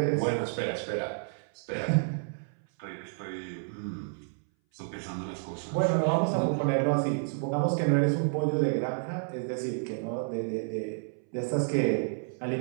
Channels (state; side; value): silent; left; 58 dB below the other